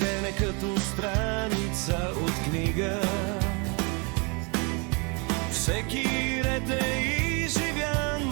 е като страница от книга. Всеки ред е изживян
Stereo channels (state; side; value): quieter; left; 32.0 dB